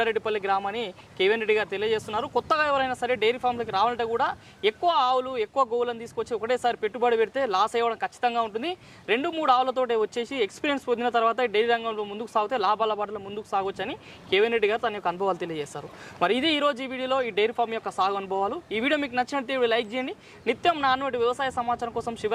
గ్రామాన్ని కేవీఎన్ రెడ్డి గారు తెలియజేస్తున్నారు. కొత్తగా ఎవరైనా సరే డైరీ ఫామ్లోకి రావాలంటే కూడా ఎక్కువ ఆవులు, ఎక్కువ గోవులను తీసుకొచ్చి ఒకటేసారి పెట్టుబడి పెడితే లాస్ అయ్యడం ఖచ్చితంగా ఉంటుంది. 2-3 ఆవులతోటే వచ్చేసి ఎక్స్పీరియన్స్ పొందిన తర్వాత డైరీ రంగంలో ముందుకు సాగితే లాభాల బాటలో ముందుకు సాగొచ్చని కేవీఎన్ రెడ్డి గారు తన యొక్క అనుభవాలు తెలియజేస్తారు. మరి ఇది ఈరోజు ఈ వీడియోలో ఈ డైరీ ఫామ్ యొక్క సాగు అనుభవాలు. ఈ వీడియో మీకు నచ్చినట్టు లైక్ చేయండి. నిత్యం నాన్నటి వ్యవసాయ సమాచారం కోసం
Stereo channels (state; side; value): identical; both; correlation 1.00